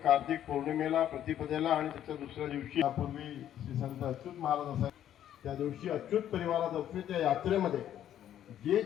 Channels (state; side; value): quieter; right; 10.9 dB